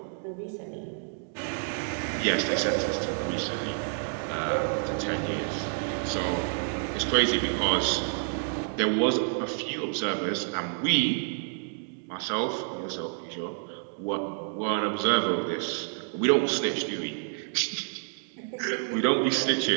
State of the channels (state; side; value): silent; left; 59 dB below the other